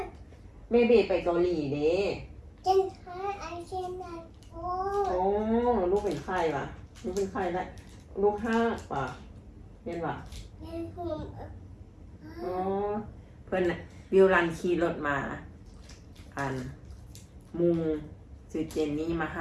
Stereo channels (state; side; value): identical; both; correlation 1.00